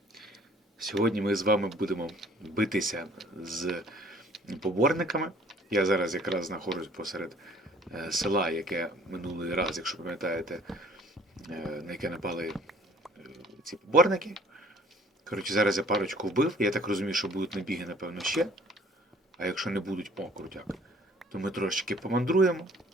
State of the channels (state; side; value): normal; both; correlation 0.55